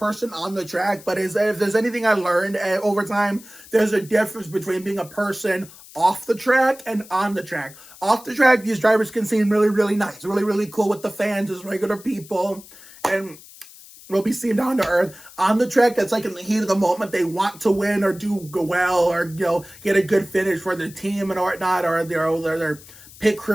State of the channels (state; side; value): noise; left; hiss, 20 dB below the sound